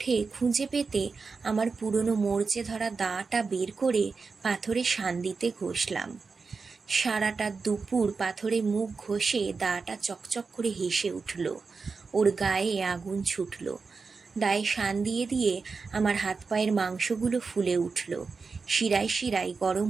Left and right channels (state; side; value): quieter; left; 4.7 dB